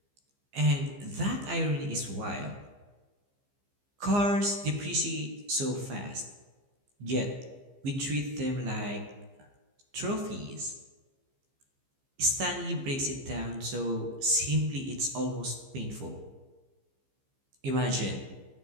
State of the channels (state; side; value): late; left; 15 ms